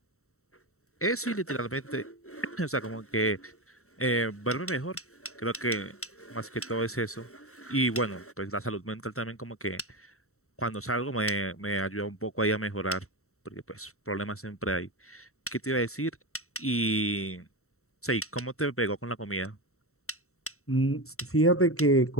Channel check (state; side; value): late; right; 0.63 ms